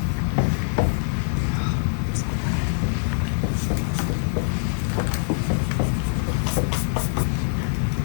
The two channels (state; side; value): silent; right; digital silence